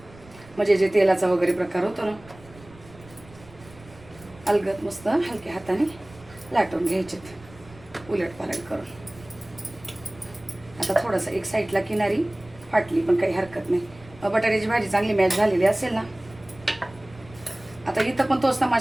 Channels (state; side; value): noise; right; rumble, 22 dB below the sound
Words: म्हणजे जे तेलाचा वगैरे प्रकार होतो ना, अलगद मस्त हलक्या हाताने लाटून घ्यायचेत उलट पालट करून. आता थोडंसं एक साईडला किनारी फाटली पण काही हरकत नाही. बटाट्याची भाजी चांगली मॅच झालेली असेल ना. आता इथं पण तोच